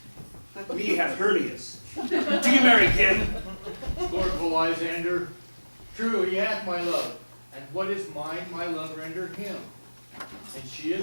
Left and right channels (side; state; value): both; inverted; correlation -1.00